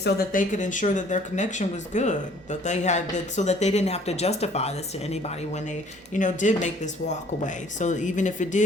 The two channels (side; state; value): both; normal; correlation 0.56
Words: that they could ensure that their connection was good, that they had that, so that they didn't have to justify this to anybody when they, did make this walk away. So even if it